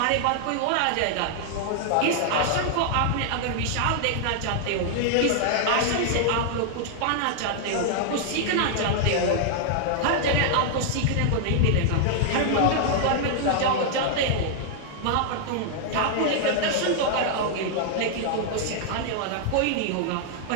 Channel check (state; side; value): different; both; correlation -0.01